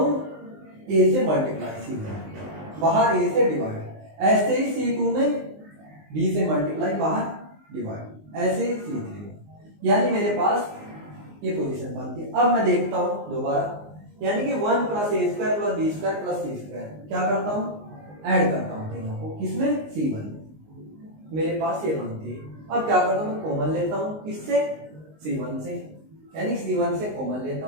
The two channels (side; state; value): left; late; 19 ms